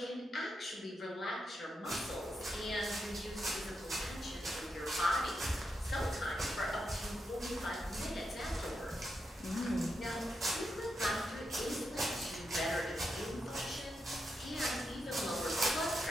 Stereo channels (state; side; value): normal; both; correlation 0.84